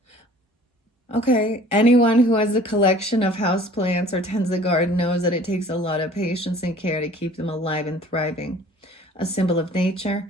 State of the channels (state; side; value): normal; both; correlation 0.50